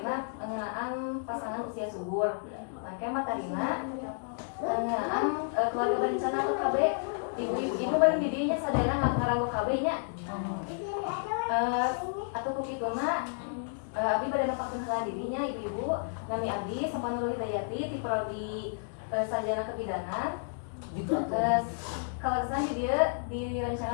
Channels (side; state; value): right; silent; digital silence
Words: ngeunaan pasangan usia subur. Mangke materina ngeunaan keluarga berencana KB. Ibu bari di dieu nya sadayana ngaranggo KB nya. Atau kukituna abdi bade nepakeun heula dirinya ibu-ibu nami abdi Sapanul Hidayati ti prodi sarjana kebidanan kalarasan di dieu